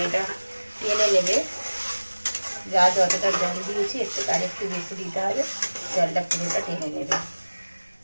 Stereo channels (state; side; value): inverted; both; correlation -1.00